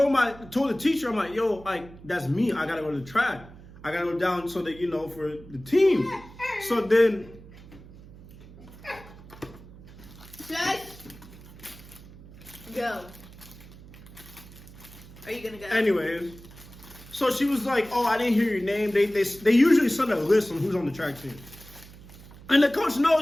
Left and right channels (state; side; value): noise; right; hum, 19 dB below the sound